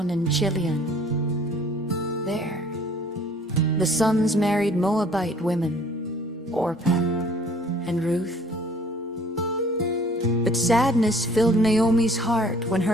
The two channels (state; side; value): normal; both; correlation 0.55